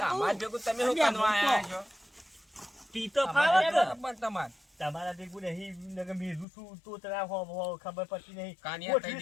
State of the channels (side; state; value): right; drops out; at 6.5 s